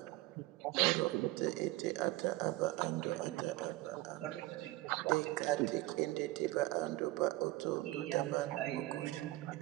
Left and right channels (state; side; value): quieter; left; 18.7 dB